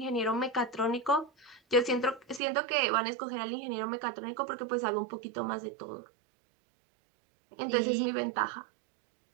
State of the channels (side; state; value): left; drops out; at 2.4 s